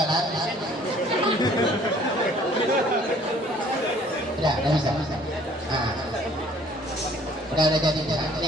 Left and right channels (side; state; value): both; normal; correlation 0.56